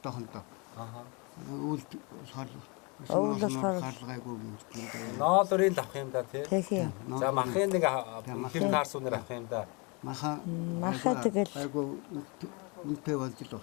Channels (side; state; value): right; quieter; 30.8 dB